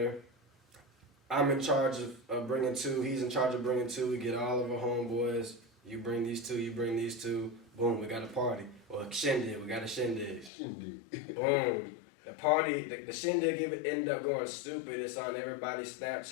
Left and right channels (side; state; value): right; drops out; at 10.5 s